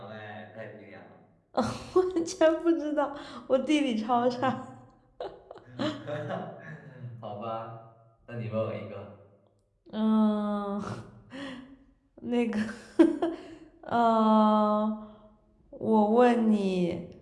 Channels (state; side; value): identical; both; correlation 1.00